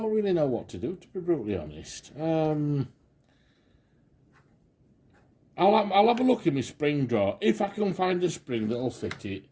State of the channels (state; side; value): identical; both; correlation 1.00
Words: really know what to do, to be brutally honest. I'll have a look in my spring drawer. If I can find a spring that'll fit it,